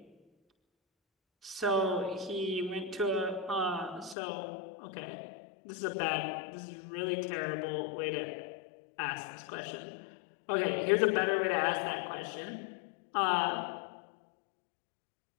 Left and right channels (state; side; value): drops out; right; at 4.2 s